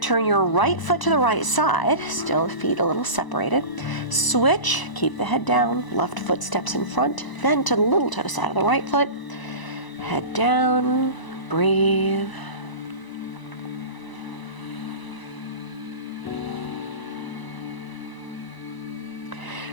your right foot to the right side, still feet a little separated. Switch, keep the head down, left foot steps in front, then to the little toe side of the right foot. Head down, breathe.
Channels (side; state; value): right; late; 1.0 ms